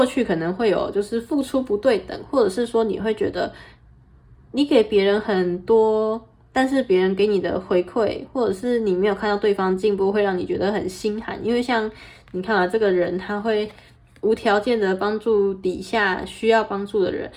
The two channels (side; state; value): both; identical; correlation 1.00